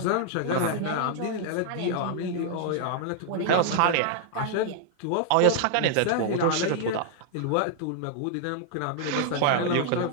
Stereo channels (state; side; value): different; both; correlation -0.01